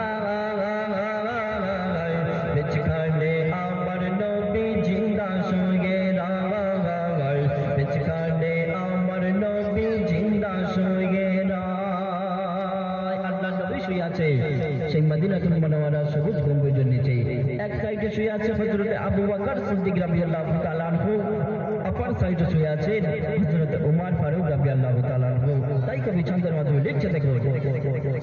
বিছখানে আমার নবী জিন্দা শুয়ে রায় বিছখানে আমার নবী জিন্দা শুয়ে রায় আল্লাহ নবী শুয়ে আছে সেই মদিনাতুল মুনাওয়ারা সবুজ গম্বুজের নিচে এক সাইডে শুয়ে আছে হযরত আবু বকর সিদ্দিক রাদিয়াল্লাহু তাআলা আনহু অপর সাইডে শুয়ে আছেন হযরত ওমর ফারুক রাদিয়াল্লাহু তাআলা আনহু তাই কবি ছন্দের মাধ্যমে লিখছে দেখুন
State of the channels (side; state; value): both; identical; correlation 1.00